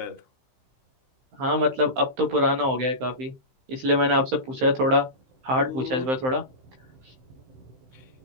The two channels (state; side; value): late; left; 15 ms